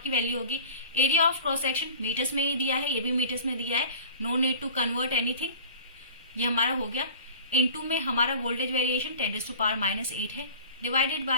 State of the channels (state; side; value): inverted; both; correlation -0.42